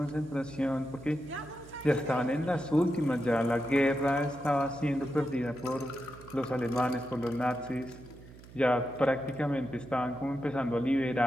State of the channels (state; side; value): noise; right; hum, 19 dB below the sound